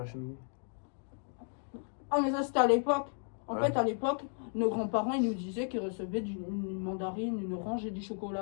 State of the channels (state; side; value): silent; right; 55 dB below the other